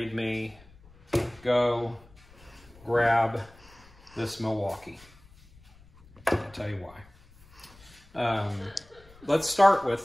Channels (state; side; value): noise; left; rumble, 25 dB below the sound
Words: me go grab this Milwaukee. I'll tell you why. Let's start